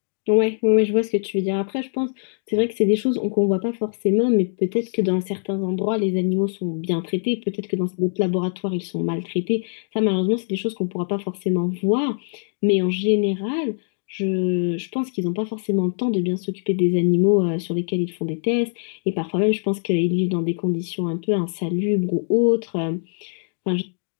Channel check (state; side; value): silent; right; digital silence